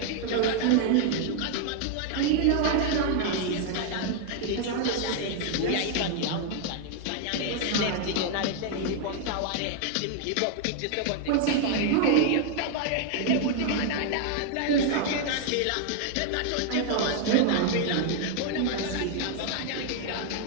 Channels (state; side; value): different; both; correlation 0.00